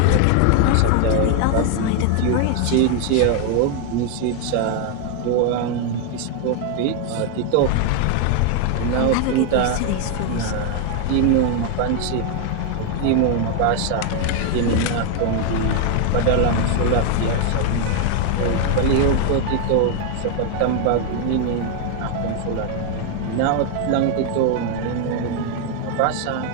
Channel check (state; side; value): different; both; correlation 0.01